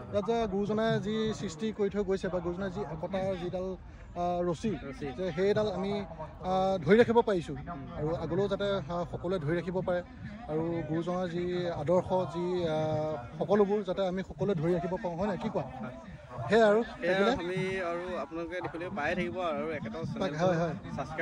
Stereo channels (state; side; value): identical; both; correlation 1.00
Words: ইয়াত যে গুৰুজনাই যি সৃষ্টি কৰি থৈ গৈছে বা গুৰুজনাই যি একতাৰ যিডাল ৰছী যে সেইডাল আমি ধৰি ৰাখিব পাৰিছোঁ আৰু আগলৈও যাতে সকলোৱে ধৰি ৰাখিব পাৰে আৰু গুৰুজনাৰ যি আদৰ্শ যি সকলোবোৰ যাতে আমি সকলোৱে ধৰি ৰাখিব পাৰোঁ হয় নাই কি কোৱা সেয়াই আৰু আমি আৰু আপোনালোকে দেখিলে পাই থাকিব আৰু একেটাও চেনেল